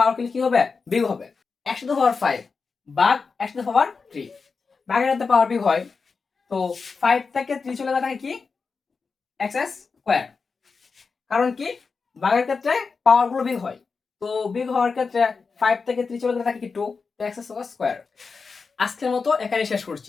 কি হবে? বিয়োগ হবে। x টু দ্য পাওয়ার 5 ভাগ x টু দ্য পাওয়ার 3, ভাগের সাথে পাওয়ার বিয়োগ হয়। তো 5 থেকে 3 চলে গেলে থাকে কি x স্কয়ার। কারণ কি ভাগের ক্ষেত্রে পাওয়ার গুলো বিয়োগ হয়, তো বিয়োগ হওয়ার ক্ষেত্রে 5 থেকে 3 চলে গেলে থাকে কি 2, তো x স্কয়ার। আজকের মতো এখানে শেষ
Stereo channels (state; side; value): quieter; right; 4.9 dB